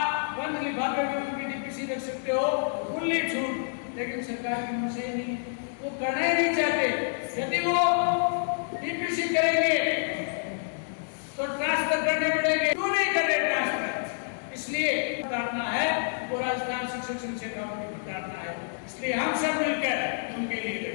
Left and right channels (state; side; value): silent; right; digital silence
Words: बंद लिफाफे में उनकी डीपीसी रख सकते हो, खुली छूट। लेकिन सरकार की मंशा ही नहीं, वो करना ही नहीं चाहते। यदि वो डीपीसी करेंगे तो ट्रांसफर करने पड़ेंगे, क्यों नहीं कर रहे ट्रांसफर? इसलिए उतारना है वो राजस्थान शिक्षक संघ शेखावाटी को उतारना है। इसलिए हम सब मिलकर